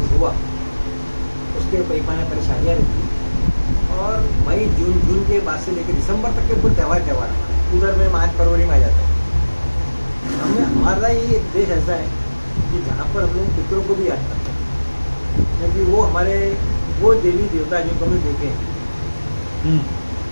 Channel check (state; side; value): inverted; both; correlation -1.00